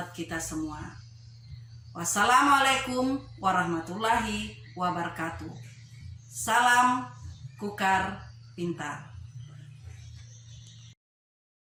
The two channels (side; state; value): both; identical; correlation 1.00